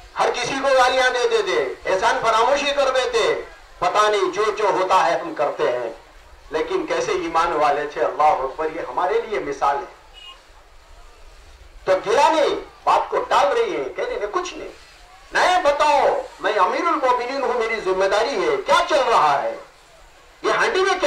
हर किसी को गालियां दे देते, एहसान फरामोशी कर देते। पता नहीं जो जो होता है हम करते हैं, लेकिन कैसे ईमान वाले थे। अल्लाह अकबर, ये हमारे लिए मिसाल है। तो गिला नहीं, बात को टाल रही है, कह रही कुछ नहीं, नहीं बताओ, मैं अमीरुल मोमिनीन हूं, मेरी जिम्मेदारी है, क्या चल रहा है, ये हांडी में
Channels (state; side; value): identical; both; correlation 1.00